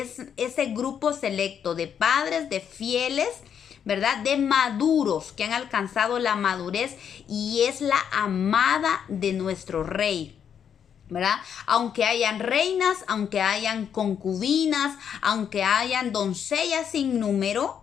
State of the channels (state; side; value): quieter; right; 8.1 dB